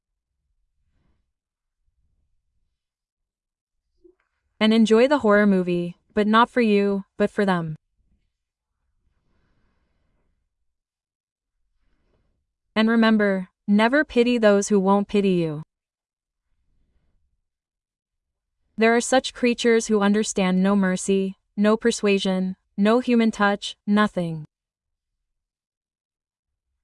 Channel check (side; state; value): both; identical; correlation 1.00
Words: And enjoy the horror movie, but not for you, but for them. And remember, never pity those who won't pity you. There are such creatures who understand no mercy, no persuasion, no human touch, nothing.